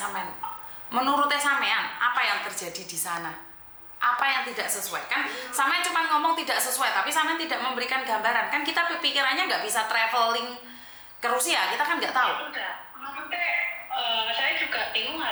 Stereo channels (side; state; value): both; identical; correlation 1.00